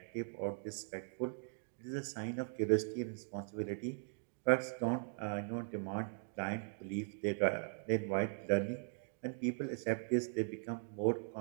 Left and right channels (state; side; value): silent; left; digital silence